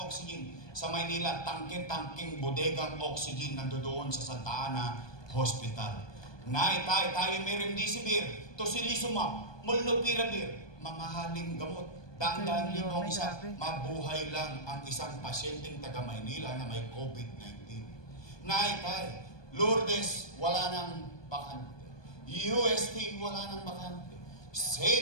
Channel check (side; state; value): right; late; 1.2 ms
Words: oxygen. Sa Maynila, tangke-tangking bodegang oxygen nandoon sa Santa Ana Hospital. Naitay, tayo may remdesivir, tocilizumab, molnupiravir, mamahaling gamot. Dang-dang libong isa, mabuhay lang ang isang pasyenteng taga Maynila na may COVID-19. Naitay, Lourdes, wala nang bakante. UST, wala nang bakante.